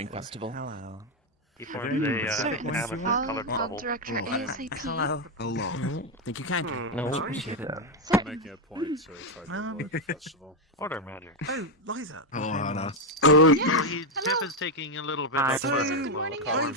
festival. Hello. He forms a colored I'll bubble. direct her ASAP. Hello. Think you can? No, appreciate it. I'm making a point to try to avoid the festival. Order magic. Oh, Liza. Oh, Hannah. Jeff is taking a little bit of the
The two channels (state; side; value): normal; both; correlation 0.04